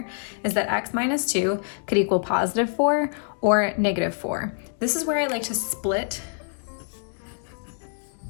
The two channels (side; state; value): right; silent; 61 dB below the other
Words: is that x minus 2 could equal positive 4 or negative 4. This is where I like to split